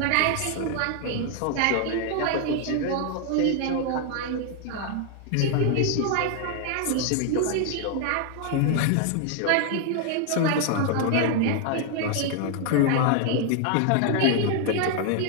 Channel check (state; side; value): different; both; correlation 0.00